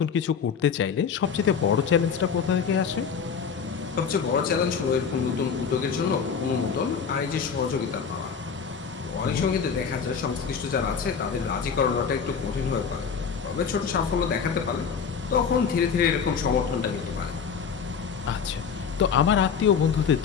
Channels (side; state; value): right; quieter; 6.5 dB